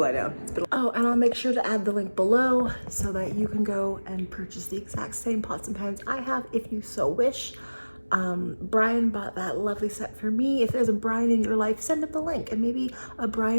down. Oh, and I'll make sure to add the link below so that you can go and purchase the exact same pots and pans I have if you so wish. Brian bought that lovely set for me. If there's a Brian in your life, send him the link and maybe a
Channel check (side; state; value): both; inverted; correlation -1.00